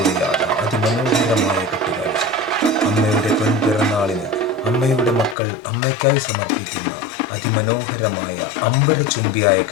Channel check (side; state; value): right; drops out; at 5.4 s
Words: അതിമനോഹരമായ കെട്ടുകാഴ്ച. അമ്മയുടെ പൊൻപിറന്നാളിന് അമ്മയുടെ മക്കൾ അമ്മയ്ക്കായി സമർപ്പിക്കുന്ന അതിമനോഹരമായ അമ്പലചുംബിയായ